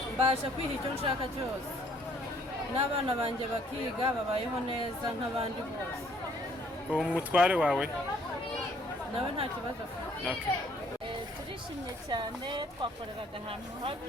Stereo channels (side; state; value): both; normal; correlation 0.62